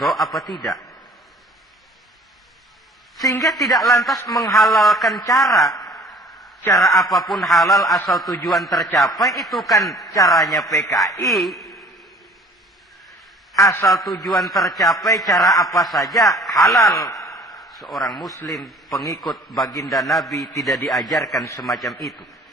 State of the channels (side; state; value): both; normal; correlation 0.51